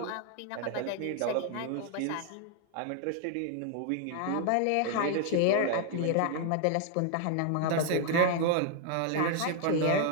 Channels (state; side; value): different; both; correlation 0.00